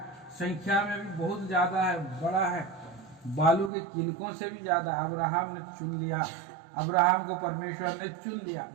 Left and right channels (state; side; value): drops out; left; at 3.7 s